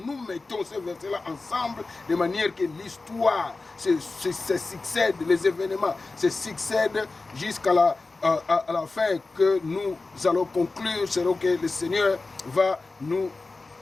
mettons ces versets-là ensemble de manière que l'histoire se succède, les événements se succèdent jusqu'à la fin que nous allons conclure, selon que le Seigneur va nous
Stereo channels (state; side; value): quieter; right; 3.6 dB